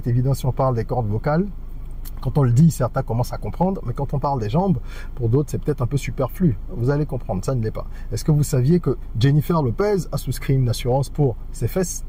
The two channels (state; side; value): identical; both; correlation 1.00